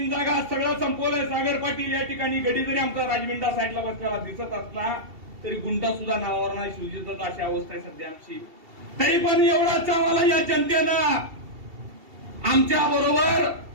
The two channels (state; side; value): late; left; 2.7 ms